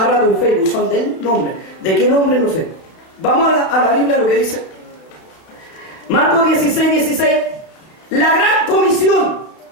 rato en Facebook. Son del nombre. ¿De qué nombre? No sé. Vamos a la Biblia, lo que dice. Marcos 16:16. La gran comisión.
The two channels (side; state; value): right; late; 32 ms